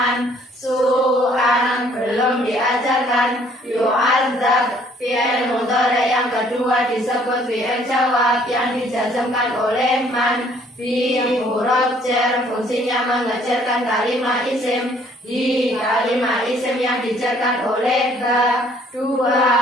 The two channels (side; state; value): both; normal; correlation 0.61